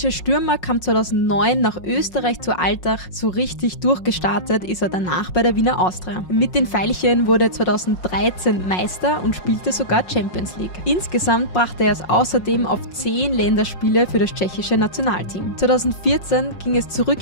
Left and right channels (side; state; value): right; late; 5.5 ms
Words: Stürmer kam 2009 nach Österreich zu Altach. So richtig durchgestartet ist er danach bei der Wiener Austria. Mit den Veilchen wurde er 2013 Meister und spielte sogar Champions League. Insgesamt brachte er es außerdem auf 10 Länderspiele für das tschechische Nationalteam. 2014 ging es